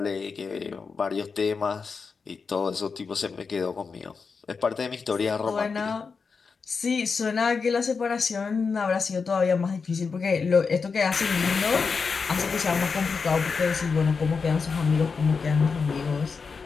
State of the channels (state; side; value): quieter; right; 5.1 dB